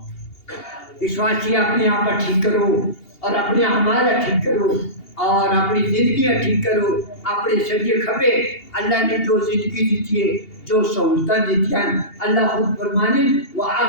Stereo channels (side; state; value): right; late; 2.8 ms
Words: اس واسطے اپنے آپ ٹھیک کرو اور اپنے اعمال ٹھیک کرو اور اپنی زندگیاں ٹھیک کرو، اپنے سجے کھبے اللہ نے جو زندگی دیتی ہے، جو سہولتیں دیتی ہیں، اللہ خود فرمانے